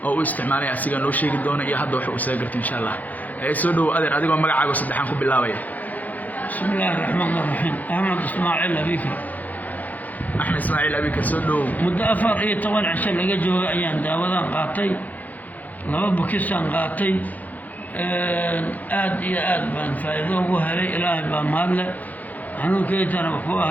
oo u isticmaalay asiga noo sheegi doona iyo hadda waxa uu soo gartay insha Allah soo dhaw adeer adigoo magacaaga saddexan ku bilaabaya بسم الله الرحمن الرحيم أحمد إسماعيل أبيكر أحمد إسماعيل أبيكر سودو مدة أفر إيه طبعا عشان لقى جوا أيام داودان قاطي لما بكسان قاطي آد يا آد بان فايدو وهري إلهي بان مالله عنو كيت أنا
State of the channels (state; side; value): late; right; 0.080 ms